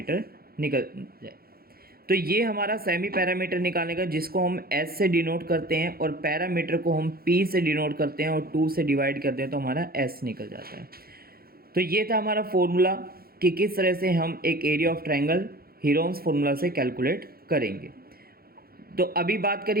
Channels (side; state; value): left; late; 0.44 ms